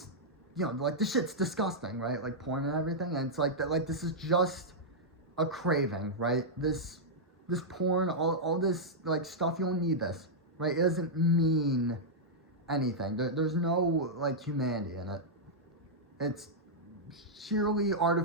you know, like the shit's disgusting, right? Like porn and everything, and it's like that. Like this is just a craving, right? This porn, all this like stuff. You don't need this, right? It doesn't mean anything. There's no like humanity in it. It's sheerly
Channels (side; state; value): both; normal; correlation -0.07